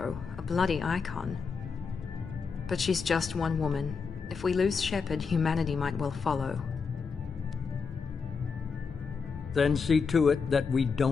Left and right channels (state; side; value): quieter; right; 5.4 dB